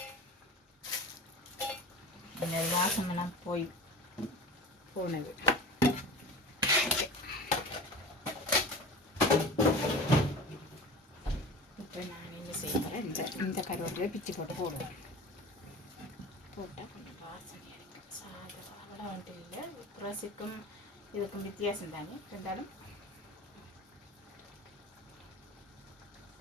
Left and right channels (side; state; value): both; normal; correlation 0.36